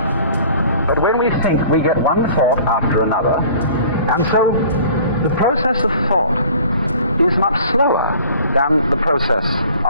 But when we think, we get one thought after another, and so the process of thought is much slower than the process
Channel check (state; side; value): inverted; both; correlation -0.48